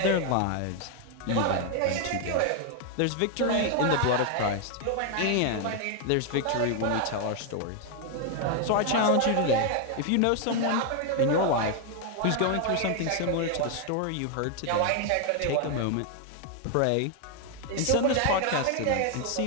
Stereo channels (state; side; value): different; both; correlation 0.01